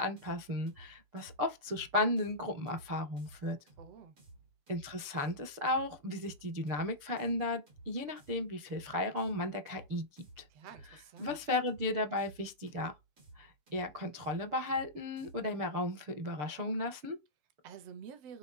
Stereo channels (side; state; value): left; late; 6.8 ms